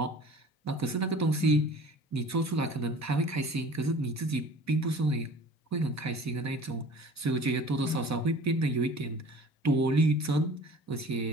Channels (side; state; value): both; normal; correlation 0.45